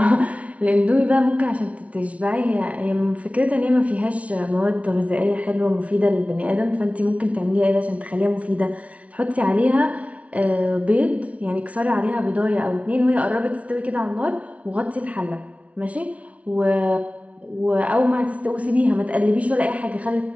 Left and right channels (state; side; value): late; left; 0.065 ms